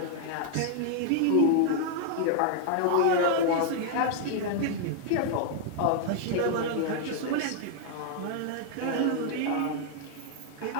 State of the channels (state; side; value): different; both; correlation 0.00